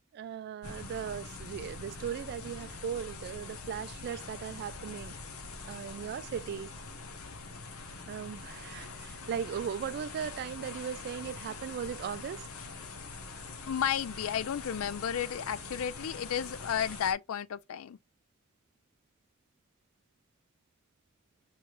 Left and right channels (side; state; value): both; normal; correlation -0.11